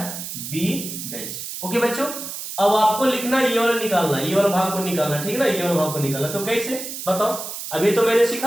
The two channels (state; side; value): noise; right; hiss, 8 dB below the sound